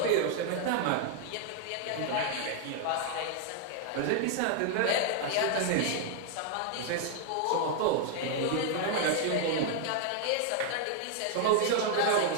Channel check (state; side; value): different; both; correlation 0.00